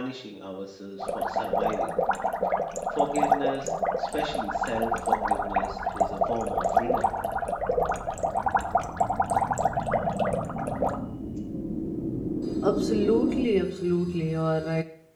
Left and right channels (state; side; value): identical; both; correlation 1.00